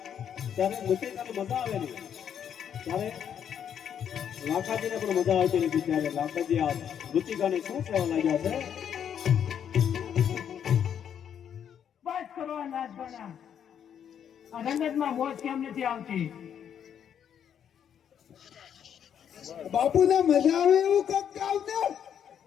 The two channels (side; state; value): right; quieter; 8.7 dB